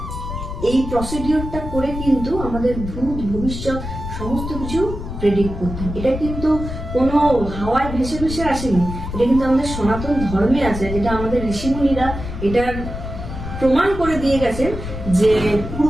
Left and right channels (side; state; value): left; noise; rumble, 7 dB below the sound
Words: এই প্রসিডিওরটা করে কিন্তু আমাদের ভূত ভবিষ্যৎ সমস্ত কিছু প্রেডিক্ট করতেন। এটা কিন্তু কোনো হাওয়ায় ভেসে ভেসে আসেনি, এটা কিন্তু আমাদের সনাতন ধর্মে আছে, যেটা আমাদের ঋষিমুনিরা এটার প্রমাণ করে দিয়ে গেছেন যে